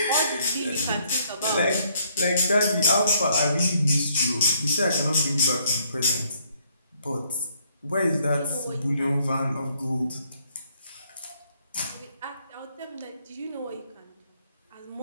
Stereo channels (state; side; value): inverted; both; correlation -0.68